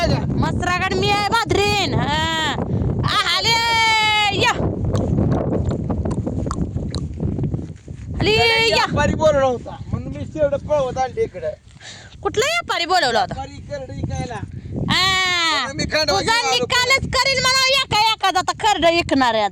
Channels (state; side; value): identical; both; correlation 1.00